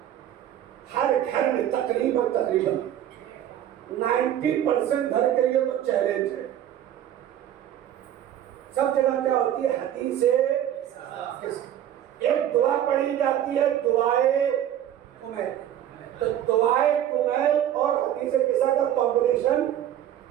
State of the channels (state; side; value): quieter; left; 11.1 dB